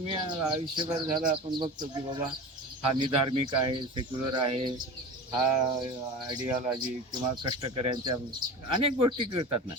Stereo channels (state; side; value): normal; both; correlation 0.32